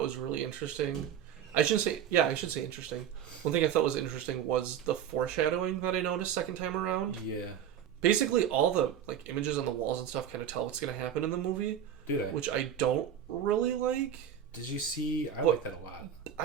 was really interesting. I should say interesting. One thing I thought was interesting was the foreshadowing that I noticed second time around. Yeah. Basically, all the like images on the walls and stuff kind of tell what's going to happen in the movie. Do they? Which I don't really like. Did you see? I like that a lot.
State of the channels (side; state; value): left; quieter; 9.3 dB